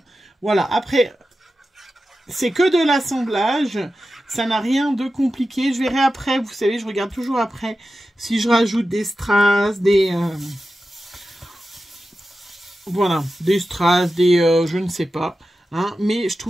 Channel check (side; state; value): both; normal; correlation 0.92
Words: Voilà, après, c'est que de l'assemblage. Ça n'a rien de compliqué. Je verrai après, vous savez, je regarde toujours après si je rajoute des strass, voilà, des strass, je ne sais pas. Hein, mais je